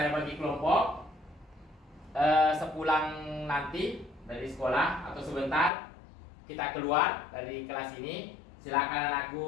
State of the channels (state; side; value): drops out; right; at 5.7 s